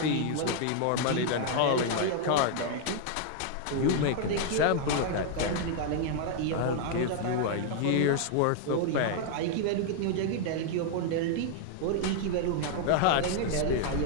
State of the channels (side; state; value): both; different; correlation 0.00